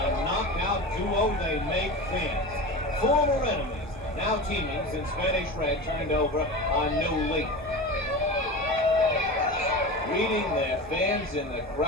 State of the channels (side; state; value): both; normal; correlation 0.29